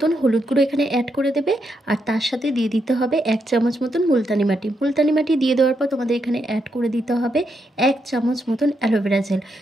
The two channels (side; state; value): both; normal; correlation 0.81